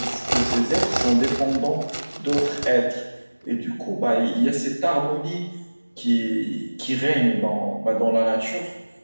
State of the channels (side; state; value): both; inverted; correlation -1.00